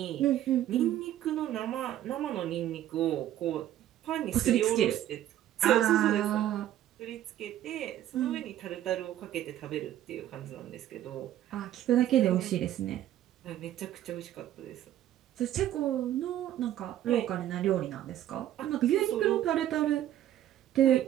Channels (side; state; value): left; quieter; 12.4 dB